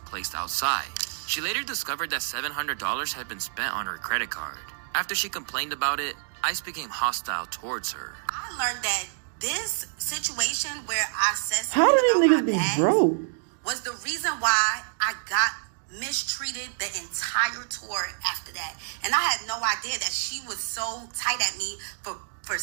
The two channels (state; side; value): silent; left; 59 dB below the other